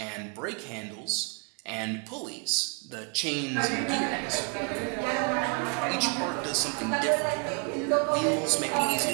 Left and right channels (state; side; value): quieter; left; 37.4 dB